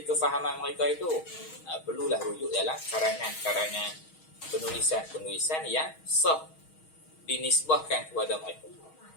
kefahaman mereka itu? Perlulah rujuk dalam karangan-karangan, penulisan-penulisan yang sah dinisbahkan kepada mereka.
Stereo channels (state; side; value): late; right; 6.3 ms